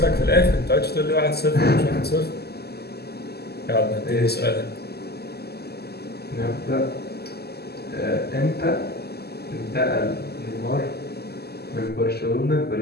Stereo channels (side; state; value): right; late; 0.46 ms